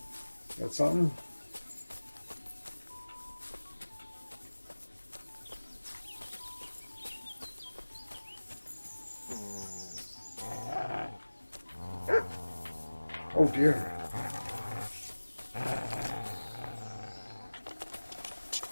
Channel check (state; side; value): inverted; both; correlation -1.00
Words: Got something? Oh dear.